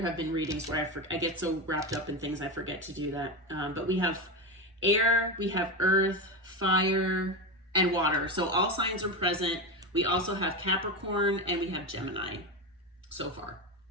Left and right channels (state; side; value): normal; both; correlation 0.17